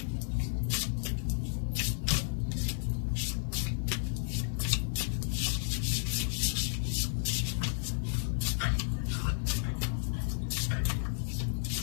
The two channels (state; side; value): silent; right; 56 dB below the other